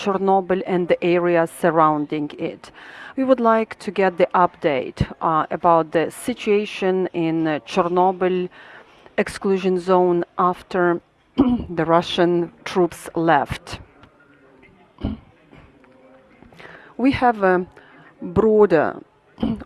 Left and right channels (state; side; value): identical; both; correlation 1.00